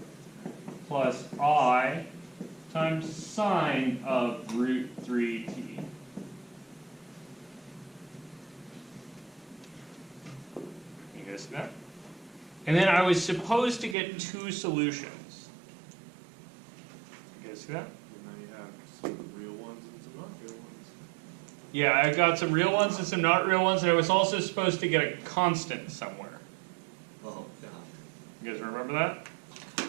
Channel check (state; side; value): drops out; left; at 14.0 s